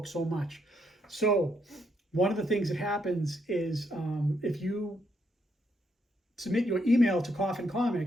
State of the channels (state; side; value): normal; both; correlation 0.76